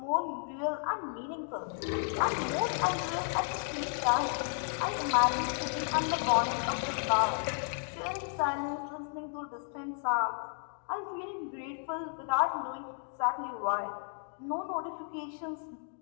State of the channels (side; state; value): right; silent; 55 dB below the other